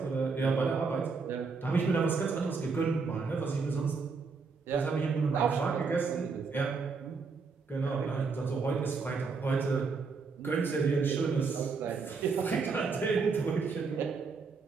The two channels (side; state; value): left; quieter; 4.8 dB